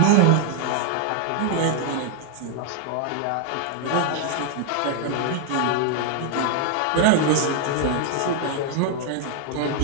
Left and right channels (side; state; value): both; different; correlation 0.00